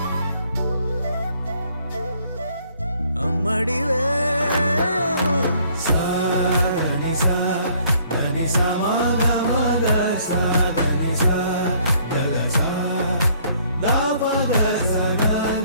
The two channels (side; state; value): both; inverted; correlation -0.62